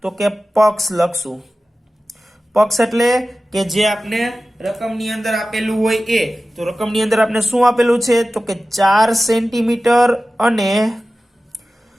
તો કે પક્ષ લખશું. પક્ષ એટલે કે જે આપણે રકમની અંદર આપેલું હોય એ. તો રકમની અંદર આપણે શું આપેલું છે? તો કે 4 સેન્ટીમીટર અને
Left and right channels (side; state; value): both; normal; correlation 0.95